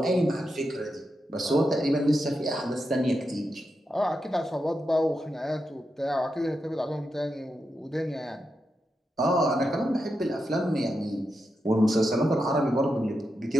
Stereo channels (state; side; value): normal; both; correlation 0.87